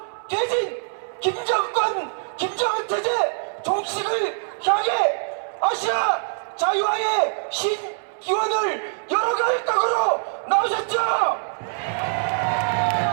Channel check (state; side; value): silent; left; 63 dB below the other